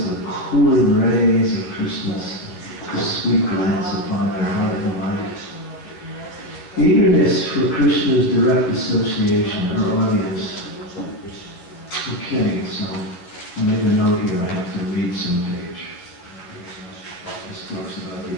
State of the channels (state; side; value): late; right; 11 ms